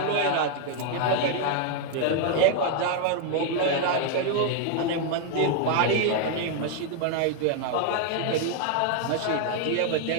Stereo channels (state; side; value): different; both; correlation 0.00